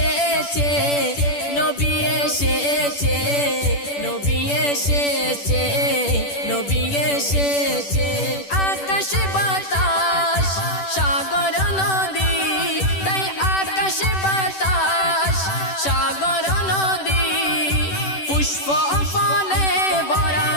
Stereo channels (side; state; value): right; late; 10 ms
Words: নবী এসেছে নবী এসেছে নবী এসেছে আকাশ বাতাস সাগর নদী তাই আকাশ বাতাস সাগর নদী পুষ্প ফলে ভরা